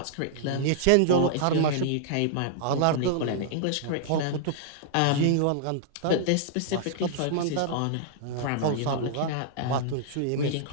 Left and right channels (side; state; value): both; different; correlation -0.01